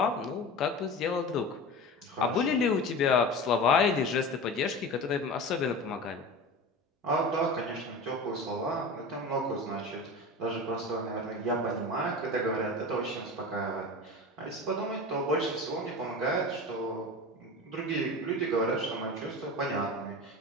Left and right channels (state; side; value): normal; both; correlation 0.31